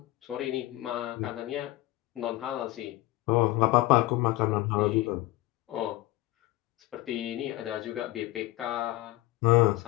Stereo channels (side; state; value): right; quieter; 17.9 dB